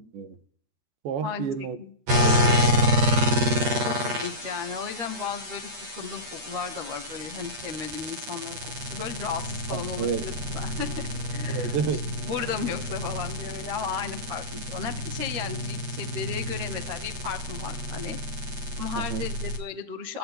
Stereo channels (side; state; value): left; late; 13 ms